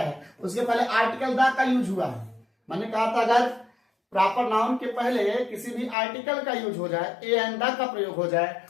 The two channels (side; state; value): right; drops out; at 6.0 s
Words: उसके पहले आर्टिकल द का यूज हुआ है। मैंने कहा था अगर प्रॉपर नाउन के पहले किसी भी आर्टिकल का यूज हो जाए, ए एंड द का प्रयोग हो जाए,